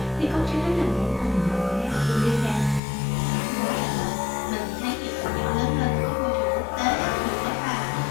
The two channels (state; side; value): drops out; right; at 2.8 s